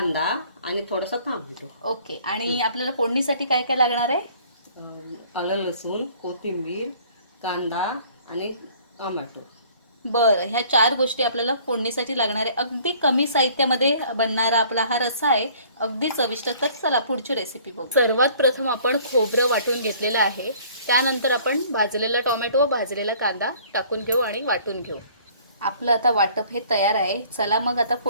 आणि थोडासा टोमॅटो. ओके. आणि आपल्याला फोडणीसाठी काय काय लागणार आहे? आलं लसूण, कोथिंबीर, कांदा आणि टोमॅटो. बरं, ह्या 4 गोष्टी आपल्याला फोडणीसाठी लागणार आहे. अगदी कमी साहित्यामध्ये बनणारा आपला हा रस्सा आहे, अगदी चविष्ट. तर चला पुढची रेसिपी बघू. सर्वात प्रथम आपण खोबरं वाटून घेतलेलं आहे. त्यानंतर आपण भाजलेला टोमॅटो व भाजलेला कांदा टाकून घेऊ आणि वाटून घेऊ. आपलं आता वाटप हे तयार आहे. चला मग आता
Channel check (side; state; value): both; inverted; correlation -0.54